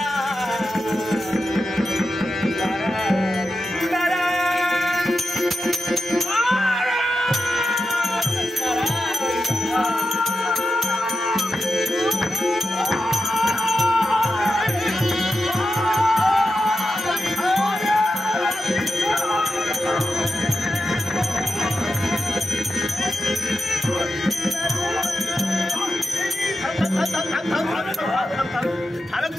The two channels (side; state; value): both; normal; correlation 0.89